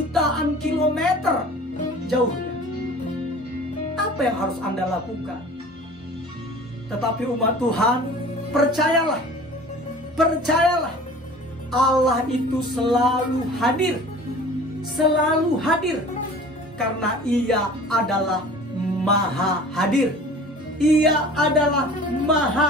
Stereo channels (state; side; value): normal; both; correlation 0.44